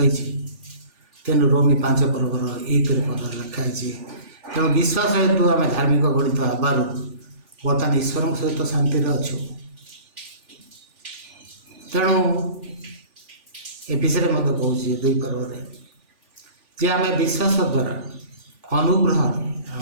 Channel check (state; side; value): late; left; 3.4 ms